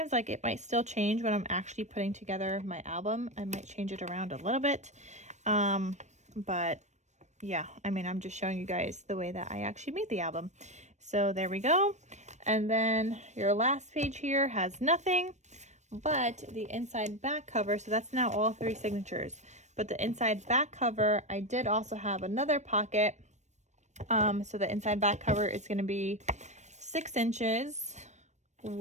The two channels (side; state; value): left; late; 0.34 ms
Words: like it might still change when I'm actually putting together my album. I might change it around a little bit. But yeah, I mean, I'm just showing you guys the way that I actually made the album. So there we go. And then your last page here has nothing but the inside back cover. So that's now all 3 signatures. But the inside back cover, I did also have another pocket. So the inside back cover is going to be 6 inches